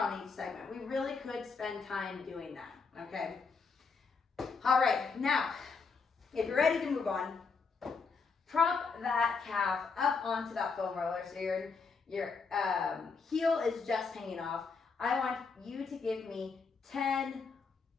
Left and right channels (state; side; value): quieter; right; 4.9 dB